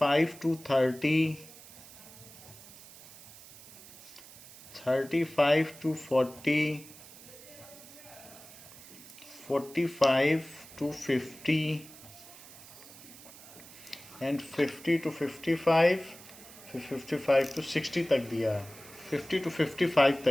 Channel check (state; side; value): noise; right; hiss, 18 dB below the sound